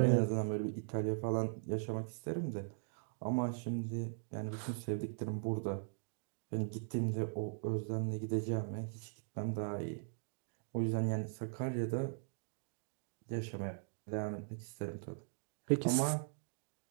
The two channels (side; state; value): left; silent; digital silence